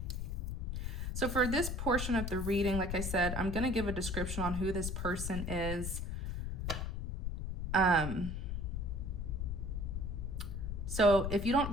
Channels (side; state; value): left; noise; rumble, 3 dB below the sound